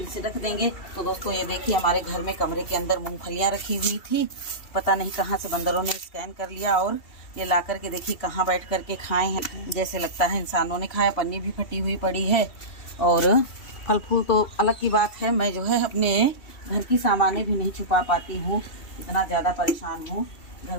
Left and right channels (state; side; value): late; right; 2.7 ms